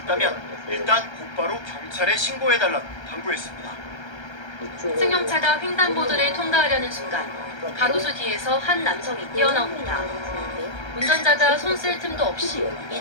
일단 곧바로 경찰에 신고해달라고 당부했습니다. 승용차가 횡단보도를 통과하려는 순간 가로수 뒤에서 한 남성이 뛰어나옵니다. 운전자가 손 쓸 틈도 없이 이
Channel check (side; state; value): right; late; 1.3 ms